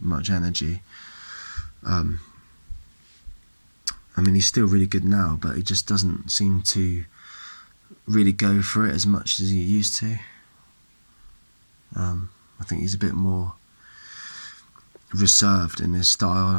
much energy. I mean, he's still really good now, but he just doesn't seem to really go for it as much as he used to. I think he's a bit more reserved in his style, and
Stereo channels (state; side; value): inverted; both; correlation -1.00